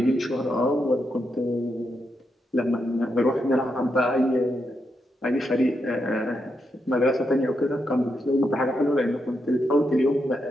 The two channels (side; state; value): both; normal; correlation 0.83